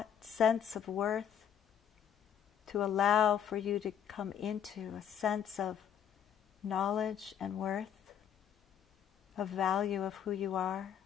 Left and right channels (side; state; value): right; quieter; 8.8 dB